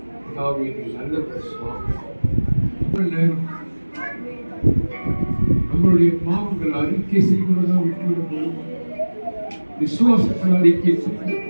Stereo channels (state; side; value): inverted; both; correlation -1.00